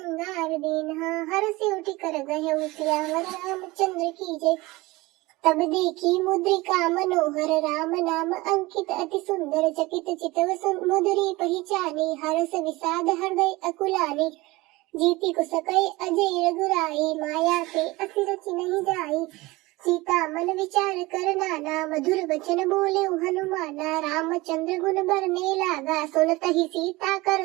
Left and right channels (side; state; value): left; quieter; 21.3 dB